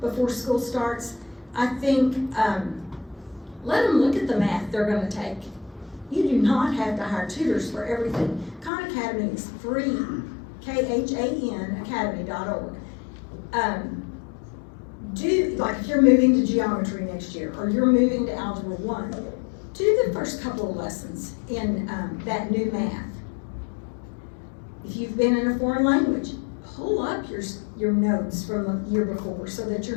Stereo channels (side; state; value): right; drops out; at 8.7 s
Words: before school starts. I think let them look at the math they're going to take. You do not have to hire tutors for everything. Khan Academy is free, KHAN academy.org. Like if you're moving to geometry next year or you're moving to Algebra 1, do the first couple of lessons in that new math. If you've been in a foreign language, pull up your notes from the year before so that